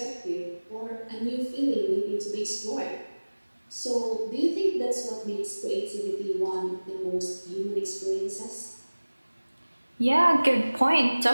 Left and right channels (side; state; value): both; inverted; correlation -1.00